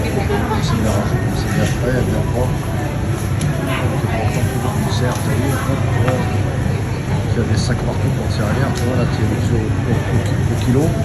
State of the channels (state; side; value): identical; both; correlation 1.00